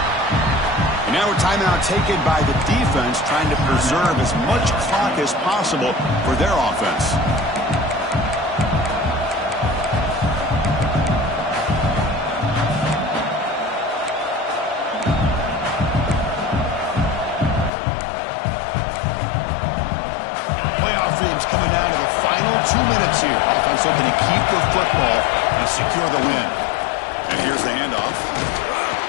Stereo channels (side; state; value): right; drops out; at 17.7 s